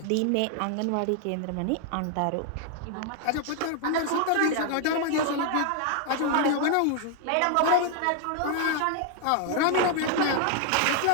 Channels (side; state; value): both; different; correlation 0.00